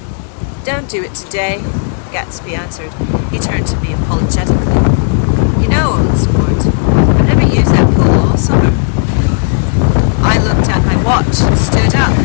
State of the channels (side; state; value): right; silent; digital silence